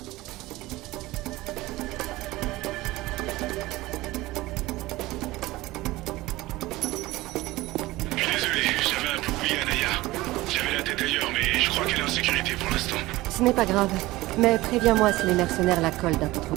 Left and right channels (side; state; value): left; quieter; 18.9 dB